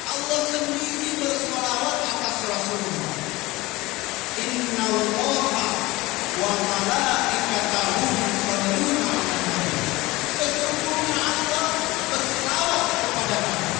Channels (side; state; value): right; quieter; 20.4 dB